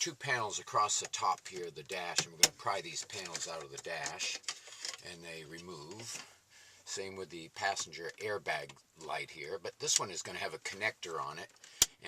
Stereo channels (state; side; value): identical; both; correlation 1.00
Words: panels across the top here of the dash, and we're going to pry these panels out of the dash, and they remove. Same with the passenger airbag light here, but this one is going to have a connector on it,